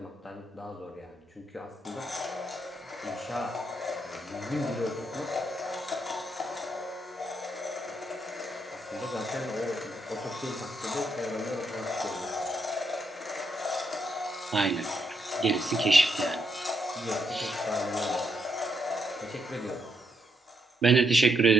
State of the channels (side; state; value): both; normal; correlation 0.78